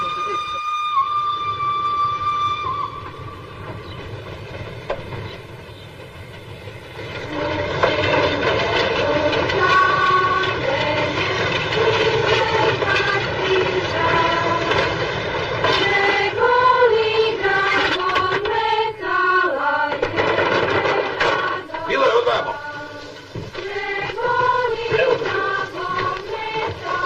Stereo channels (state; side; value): identical; both; correlation 1.00